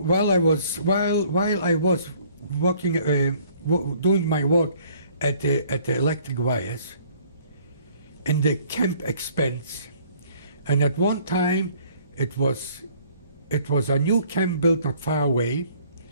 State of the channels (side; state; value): both; inverted; correlation -0.58